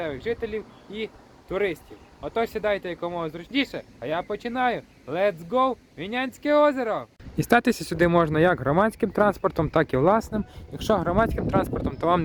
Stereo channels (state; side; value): identical; both; correlation 1.00